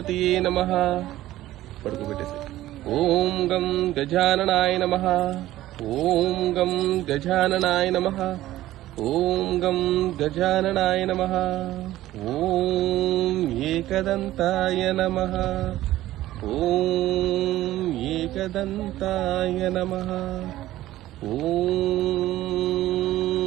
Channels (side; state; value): left; quieter; 15.1 dB